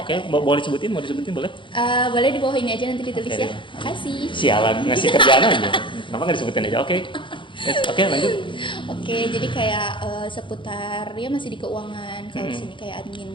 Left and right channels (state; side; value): late; right; 0.24 ms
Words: oke, boleh disebutin, boleh. Boleh di bawah ini aja nanti ditulis Oke. ya. Makasih. Sialan ngasih kerjaan aja. Kenapa nggak disebutin aja? Oke. Yes, oke lanjut. Oke, jadi kayak seputar ya masih di keuangan. Kalau sini kayak